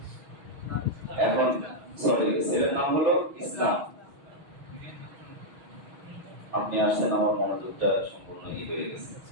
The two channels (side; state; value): left; late; 6.3 ms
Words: এখন ছেলের নাম হলো ইসলাম। আপনি আসছেন, আমার মনোযোগটা সম্পূর্ণ হয়ে গেছে